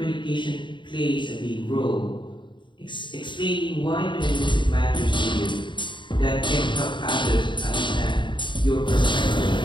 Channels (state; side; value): late; right; 0.23 ms